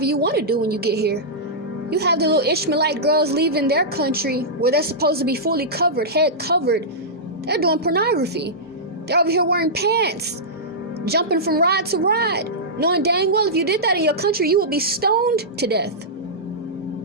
you want to do when you get here. You have the little Ishmaelite girls leaving their country where they're supposed to be fully covered, head covered. They're doing pornography. They're over here wearing pants, jumping from ride to ride, knowing dang well if you did that in your country, you would be stoned to death.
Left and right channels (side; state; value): both; normal; correlation -0.13